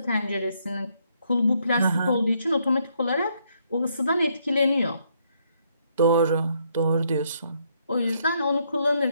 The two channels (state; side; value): inverted; both; correlation -0.72